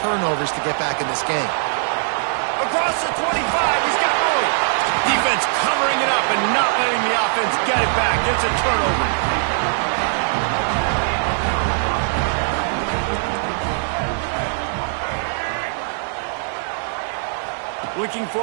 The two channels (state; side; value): silent; left; 65 dB below the other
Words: to get back in this game. Across the 25, he's got room. Defense covering it up and not letting the offense get it back. It's a turnover. Looking